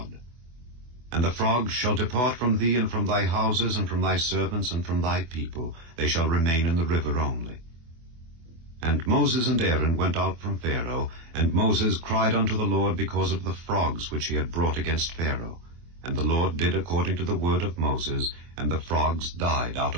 And the frogs shall depart from thee, and from thy houses, and from thy servants, and from thy people. They shall remain in the river only. And Moses and Aaron went out from Pharaoh, and Moses cried unto the Lord because of the frogs which he had brought against Pharaoh. And the Lord did according to the word of Moses, and the frogs died out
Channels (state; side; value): late; left; 24 ms